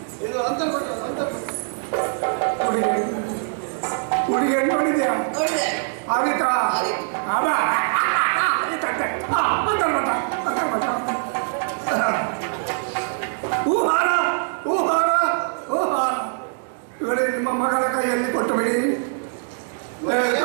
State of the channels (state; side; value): silent; left; digital silence